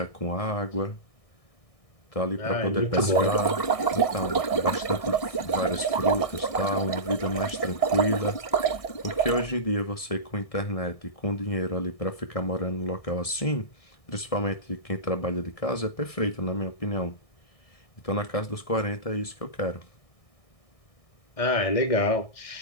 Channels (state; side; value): late; right; 1.6 ms